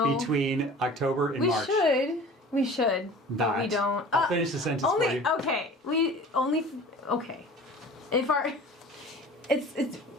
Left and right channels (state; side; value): normal; both; correlation 0.42